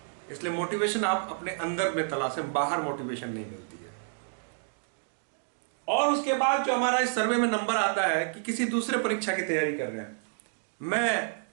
इसलिए मोटिवेशन आप अपने अंदर में तलाशें, बाहर मोटिवेशन नहीं मिलती है। और उसके बाद जो हमारा इस सर्वे में नंबर आता है कि किसी दूसरे परीक्षा की तैयारी कर रहे हैं, मैं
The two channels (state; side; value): silent; left; digital silence